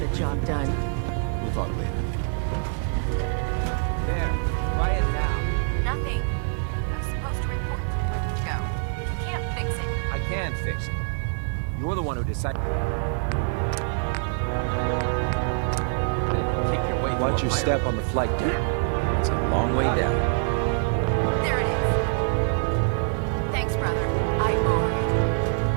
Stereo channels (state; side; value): silent; left; digital silence